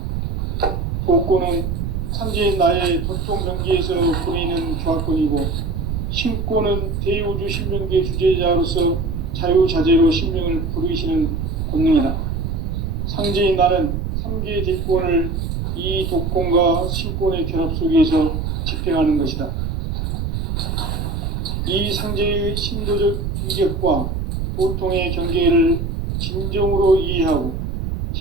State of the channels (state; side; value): noise; right; rumble, 2 dB below the sound